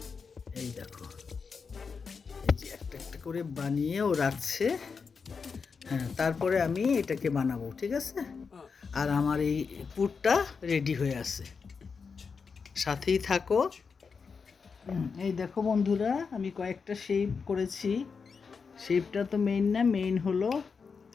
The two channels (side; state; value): right; quieter; 5.4 dB